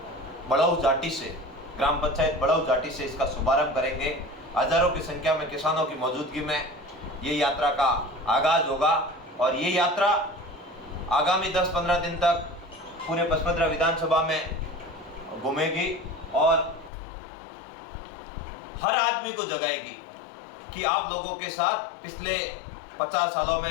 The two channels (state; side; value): drops out; right; at 16.9 s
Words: बड़ऊ जाटी से, ग्राम पंचायत बड़ऊ जाटी से इसका शुभारंभ करेंगे। हजारों की संख्या में किसानों की मौजूदगी में ये यात्रा का आगाज होगा और ये यात्रा आगामी 10-15 दिन तक पूरे पचपदरा विधानसभा में घूमेगी और हर आदमी को जगाएगी कि आप लोगों के साथ पिछले 50 सालों